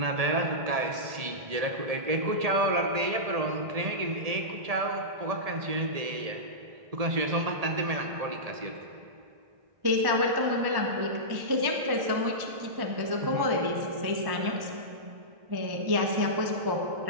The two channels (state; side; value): late; left; 1.7 ms